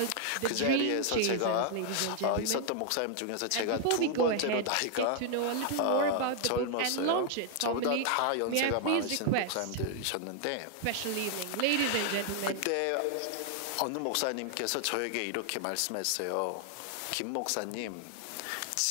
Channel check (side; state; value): both; different; correlation 0.00